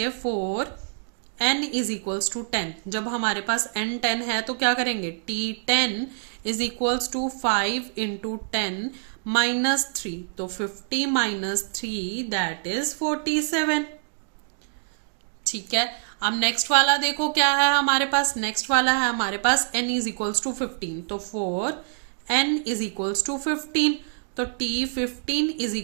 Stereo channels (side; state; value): left; silent; digital silence